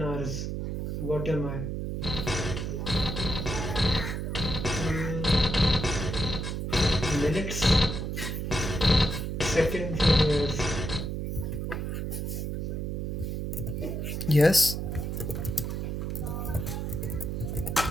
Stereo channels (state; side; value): noise; right; hum, 3 dB below the sound